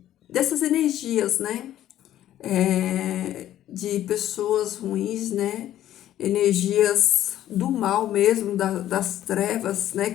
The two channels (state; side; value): quieter; right; 12.5 dB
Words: dessas energias, né? De pessoas ruins, né? Energias do mal mesmo, das trevas, né?